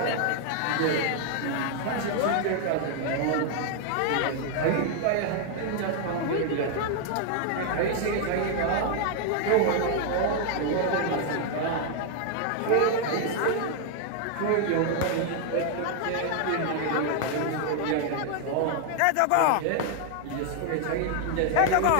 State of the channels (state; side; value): different; both; correlation 0.00